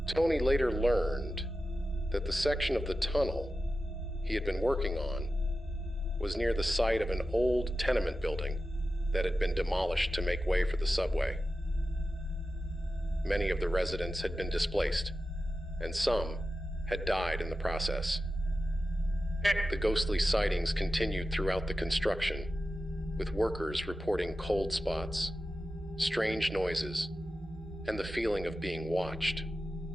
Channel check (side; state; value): both; normal; correlation 0.93